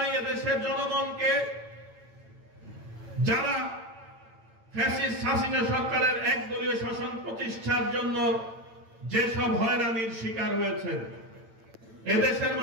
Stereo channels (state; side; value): late; left; 8.9 ms